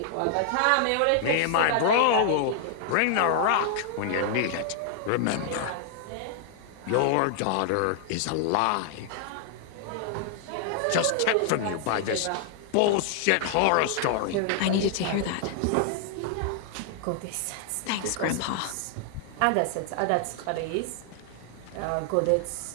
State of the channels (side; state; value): both; different; correlation 0.00